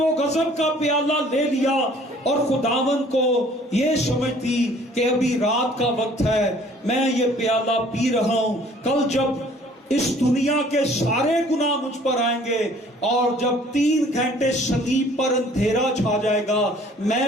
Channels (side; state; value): both; normal; correlation 0.55